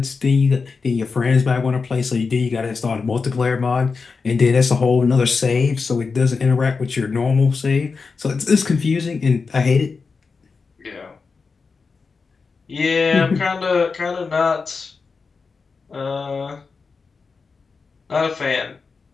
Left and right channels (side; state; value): right; quieter; 4.8 dB